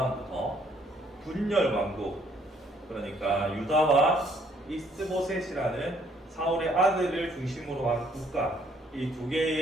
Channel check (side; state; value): both; normal; correlation 0.65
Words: 분열 왕국, 그러니까 유다와 이스보셋이라는 사울의 아들을 중심으로 한 국가, 이 두